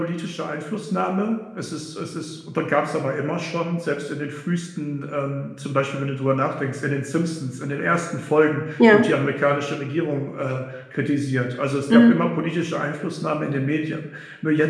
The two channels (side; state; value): both; identical; correlation 1.00